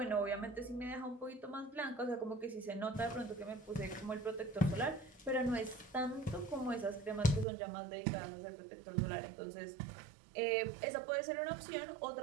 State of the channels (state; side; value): drops out; left; at 7.5 s